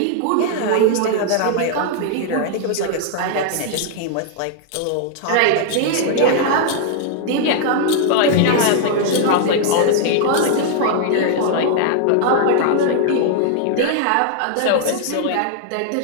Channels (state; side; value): different; both; correlation 0.00